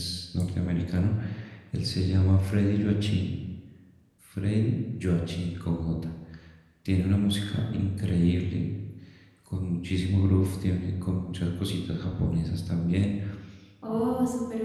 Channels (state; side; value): identical; both; correlation 1.00